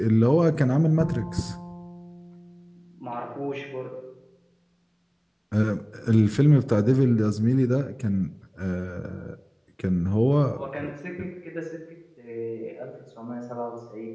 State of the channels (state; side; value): identical; both; correlation 1.00